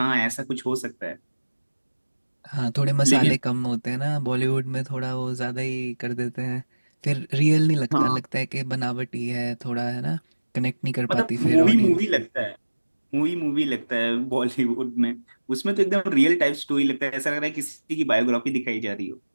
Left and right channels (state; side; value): inverted; both; correlation -1.00